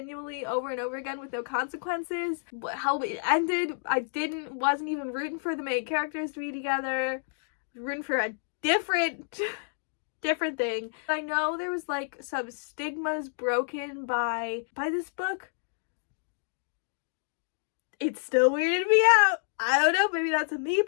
over and over again with no consequences. How it ended, I wasn't even rooting for the main characters to be together. Rooting for a different thing. I know there was like some stigmas broken by this book. It still weirded me out. I don't know, maybe that's a me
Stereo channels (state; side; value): silent; right; digital silence